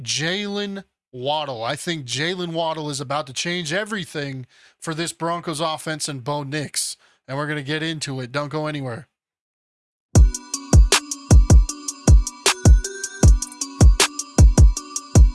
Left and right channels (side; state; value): both; identical; correlation 1.00